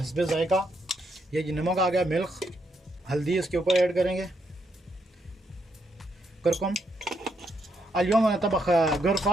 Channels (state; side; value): normal; both; correlation 0.78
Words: ज़ायका। ये जी नमक आ गया, मिल्क, हल्दी इसके ऊपर ऐड करेंगे, करकुम। अल्योम तबख